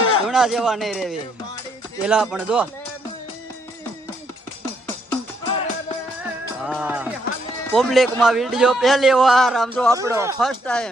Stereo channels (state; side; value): normal; both; correlation 0.73